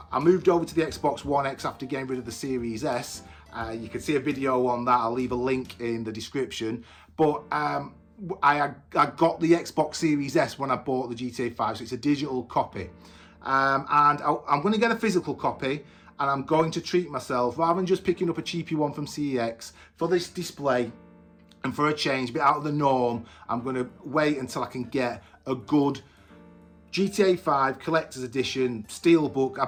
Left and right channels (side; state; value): both; identical; correlation 1.00